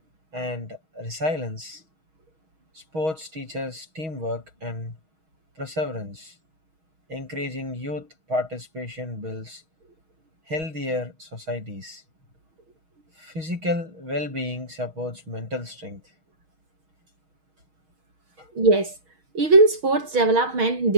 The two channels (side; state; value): left; late; 6.3 ms